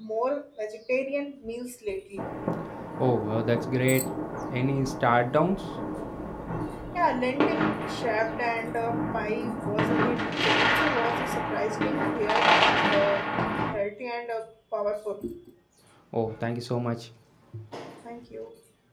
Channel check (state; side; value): identical; both; correlation 1.00